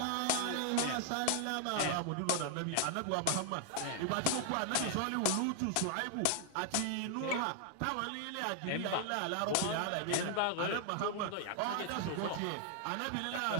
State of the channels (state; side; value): different; both; correlation 0.00